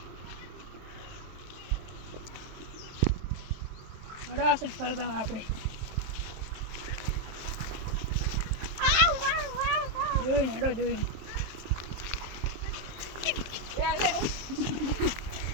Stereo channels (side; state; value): left; late; 23 ms